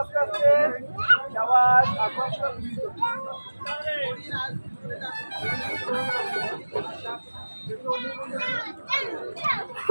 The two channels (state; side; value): inverted; both; correlation -1.00